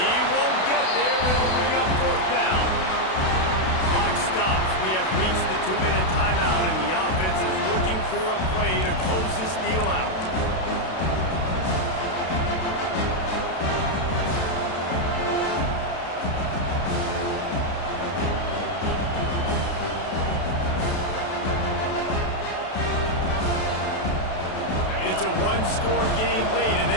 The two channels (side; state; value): right; late; 32 ms